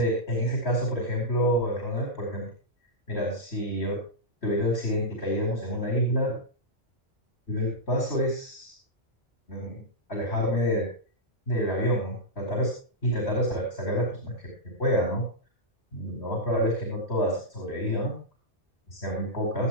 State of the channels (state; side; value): normal; both; correlation -0.09